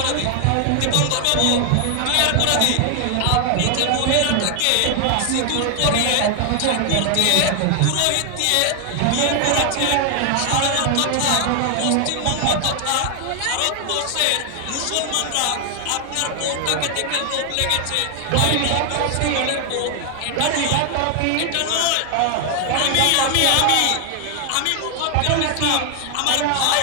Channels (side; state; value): both; different; correlation 0.00